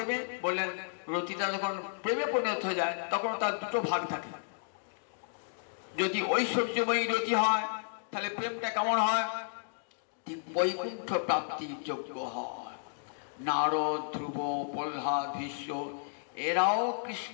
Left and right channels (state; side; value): silent; right; digital silence